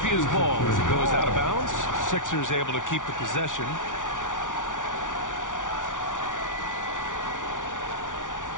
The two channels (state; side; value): late; right; 0.87 ms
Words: ball as it goes out of bounds. Sixers able to keep the possession.